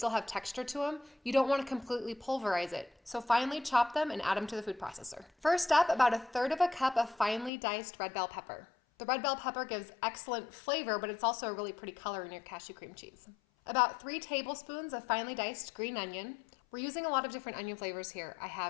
have texture to them. You don't want to completely pulverize it, so finely chop them and add them to the food processor. First up, about 1/3 cup of finely diced red bell pepper. The red bell pepper gives excellent flavor, but it's also a really pretty color in your cashew cream cheese. About 3 tablespoons of finely diced green onion. We're using a lot of different onion flavors here. I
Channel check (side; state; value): right; drops out; at 7.5 s